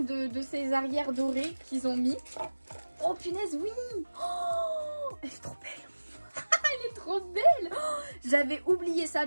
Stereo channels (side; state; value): both; inverted; correlation -1.00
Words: de ces arrières dorés qu'ils ont mis. Oh punaise oui, oh, elle est trop belle. Elle est trop belle. Oh, j'avais oublié ça,